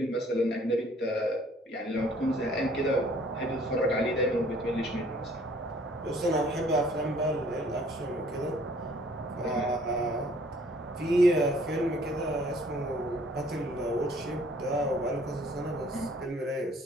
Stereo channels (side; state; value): both; normal; correlation 0.58